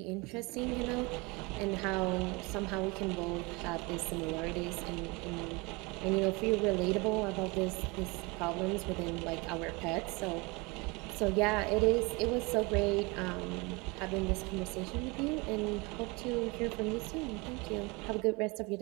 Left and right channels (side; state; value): left; quieter; 26.2 dB